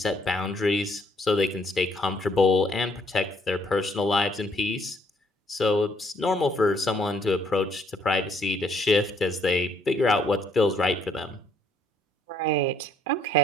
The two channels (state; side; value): normal; both; correlation 0.67